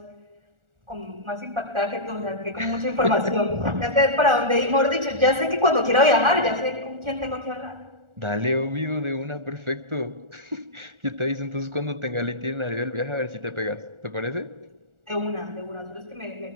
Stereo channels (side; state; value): left; late; 1.4 ms